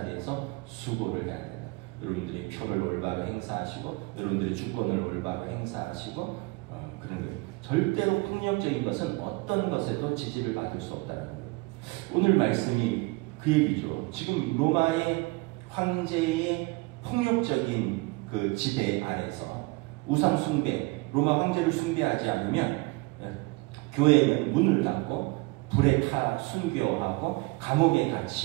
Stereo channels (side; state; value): left; quieter; 25.0 dB